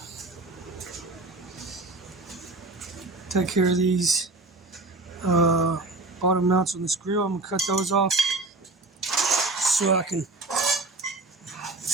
take care of these bottom mounts on this grill. I'm gonna cut those off so I can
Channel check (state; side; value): quieter; left; 3.2 dB